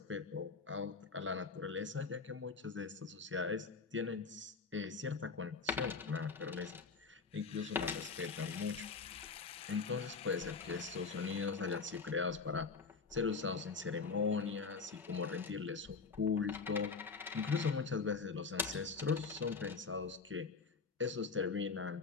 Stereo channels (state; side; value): quieter; right; 4.8 dB